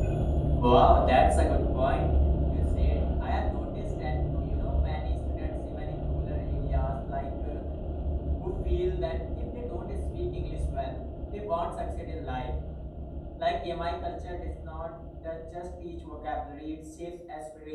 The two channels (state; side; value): identical; both; correlation 1.00